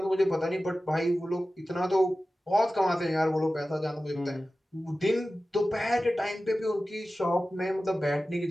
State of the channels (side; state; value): both; normal; correlation 0.95